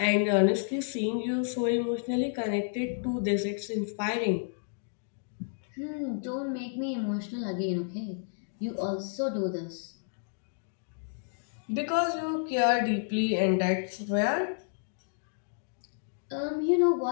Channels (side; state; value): right; silent; digital silence